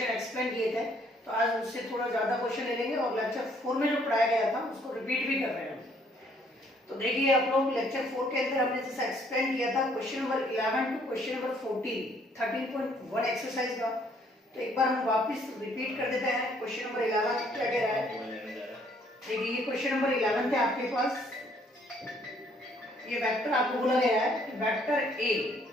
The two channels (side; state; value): both; normal; correlation 0.64